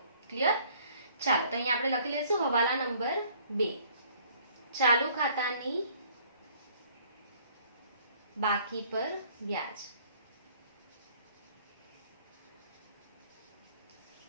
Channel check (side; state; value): both; inverted; correlation -0.57